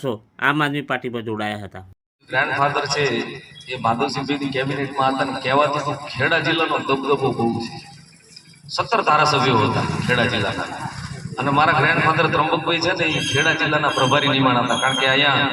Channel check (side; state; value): both; identical; correlation 1.00